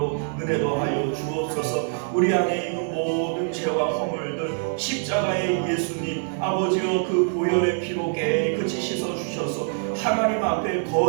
은혜 더하여 주옵소서. 우리 안에 있는 모든 죄와 허물들 십자가의 예수님 아버지여 그 보혈의 피로 깨끗이 씻어주셔서 하나님 앞에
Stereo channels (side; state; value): left; silent; 60 dB below the other